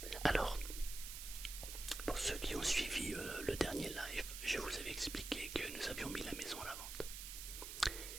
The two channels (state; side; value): noise; right; hiss, 7 dB below the sound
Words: Alors, pour ceux qui ont suivi le dernier live, je vous avais expliqué que nous avions mis la maison à la vente.